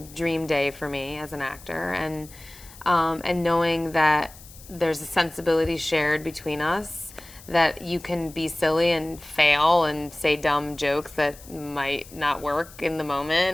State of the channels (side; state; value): left; noise; hiss, 20 dB below the sound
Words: dream day for me as an actor, and knowing that there's a sensibility shared between us, that you can be silly and fail and say dumb jokes that might not work in the